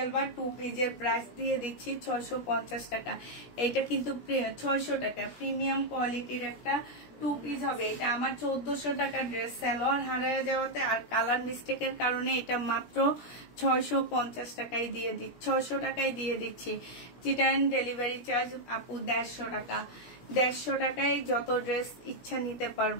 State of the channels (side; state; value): right; late; 17 ms